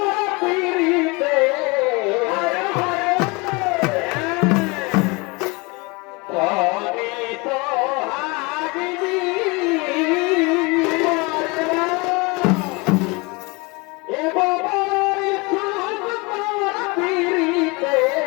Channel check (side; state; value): right; quieter; 27.0 dB